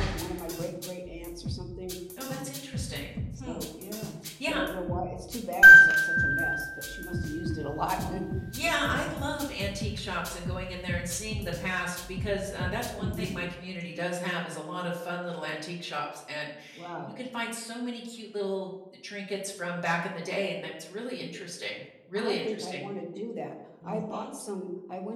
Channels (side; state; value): both; identical; correlation 1.00